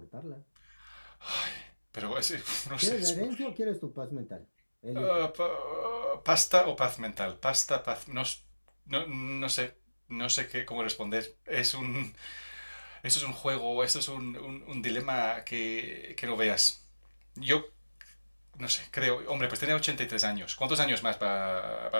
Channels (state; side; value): inverted; both; correlation -1.00